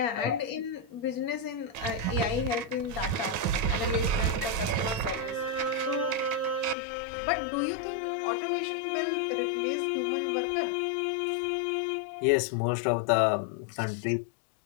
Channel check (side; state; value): right; drops out; at 6.8 s